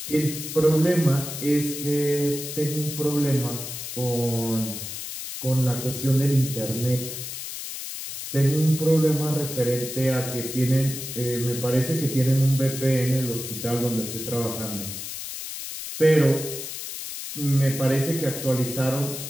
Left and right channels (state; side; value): noise; left; hiss, 8 dB below the sound